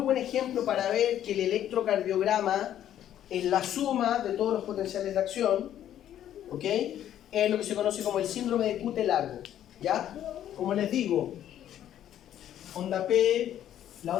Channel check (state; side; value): quieter; right; 11.1 dB